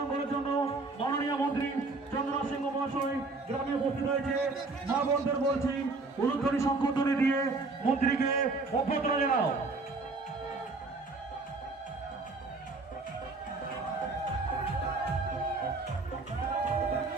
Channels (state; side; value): quieter; left; 3.6 dB